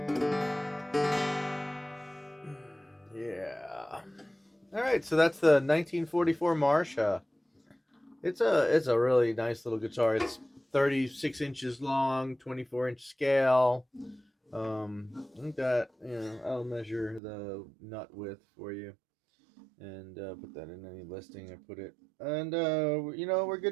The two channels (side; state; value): left; drops out; at 17.2 s